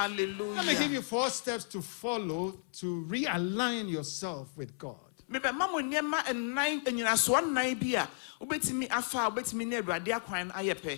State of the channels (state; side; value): silent; right; 56 dB below the other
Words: Let me give you 4 steps to follow to realign yourself with God.